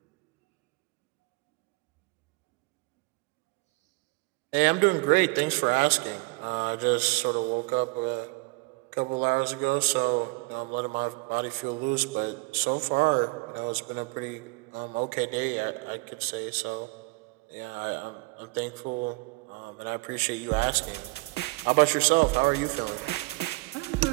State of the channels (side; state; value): left; quieter; 25.6 dB